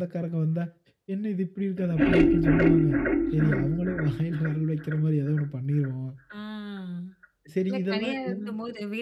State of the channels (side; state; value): both; identical; correlation 1.00